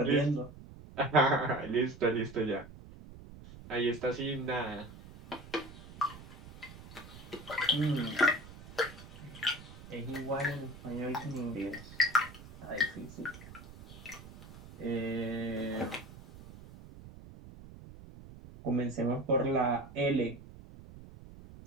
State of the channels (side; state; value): right; noise; rumble, 17 dB below the sound